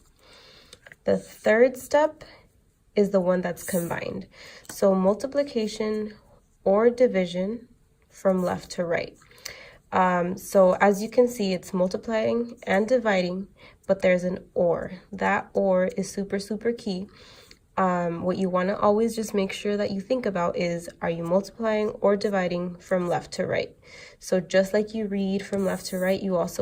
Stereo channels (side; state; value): both; identical; correlation 1.00